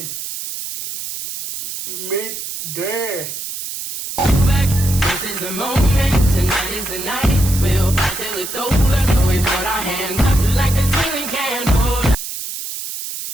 Midday. This is the moment, tonight is the night. We'll fight till it's over, so we put our hands up like a ceiling can.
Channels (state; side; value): noise; right; hiss, 7 dB below the sound